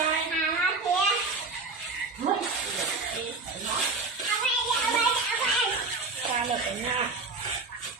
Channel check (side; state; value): left; quieter; 3.8 dB